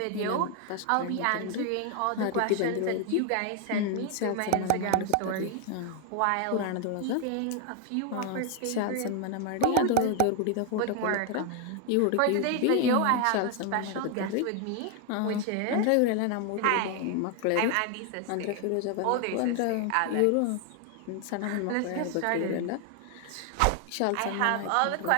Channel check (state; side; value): different; both; correlation 0.01